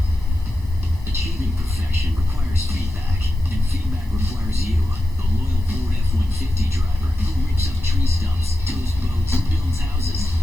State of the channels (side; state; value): left; noise; rumble, 17 dB below the sound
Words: Achieving perfection requires feedback, and feedback requires you, the loyal Ford F-150 driver who rips up tree stumps, tows boats, builds houses,